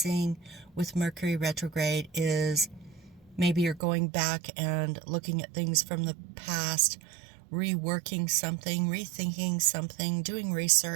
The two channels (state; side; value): drops out; left; at 3.8 s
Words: with Mercury retrograde is maybe you're going back and looking at things from the past, reworking something, rethinking something, doing